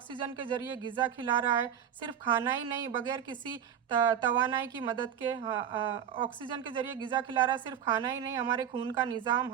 के ज़रिए ग़िज़ा खिला रहा है। सिर्फ खाना ही नहीं, बगैर किसी तवानाई की मदद के ऑक्सीजन के ज़रिए ग़िज़ा खिला रहा है। सिर्फ खाना ही नहीं, हमारे खून का निज़ाम,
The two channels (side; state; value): left; quieter; 9.0 dB